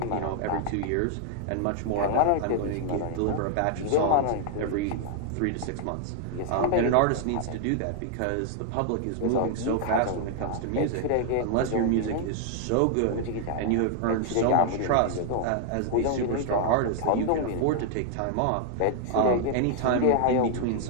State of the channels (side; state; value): both; different; correlation 0.00